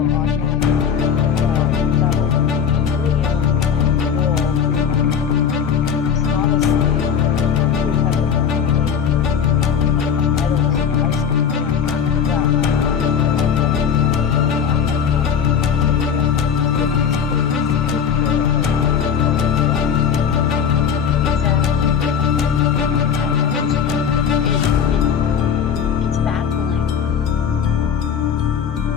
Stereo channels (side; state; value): right; quieter; 7.2 dB